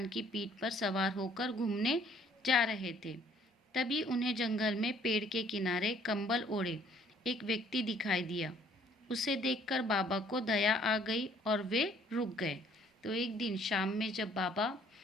की पीठ पर सवार होकर घूमने जा रहे थे। तभी उन्हें जंगल में पेड़ के किनारे कंबल ओढ़े एक व्यक्ति दिखाई दिया। उसे देखकर बाबा को दया आ गई और वे रुक गए। तो एक दिन शाम में जब बाबा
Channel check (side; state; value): both; normal; correlation 0.60